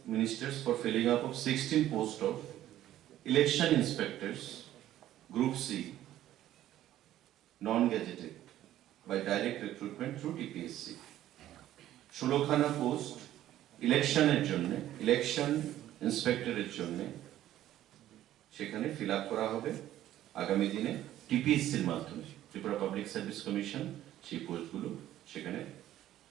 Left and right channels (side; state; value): left; quieter; 13.0 dB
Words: Ministers for filling up of 16 posts of election inspectors group C non gazetted by direct recruitment through TPSC। 16 খানা পোস্ট ইলেকশনের জন্য, ইলেকশন ইন্সপেক্টরের জন্য সেখানে ফিল আপ করা হবে আগামী দিনে টিপিএসসির মাধ্যমে। ত্রিপুরা পাবলিক সার্ভিস কমিশন সেই পোস্টগুলো সেখানে